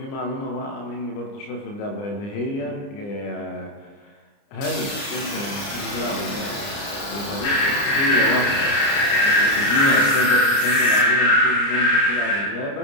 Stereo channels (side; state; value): right; late; 30 ms